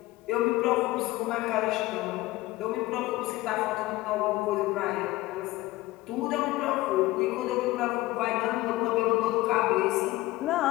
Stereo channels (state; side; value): quieter; right; 18.5 dB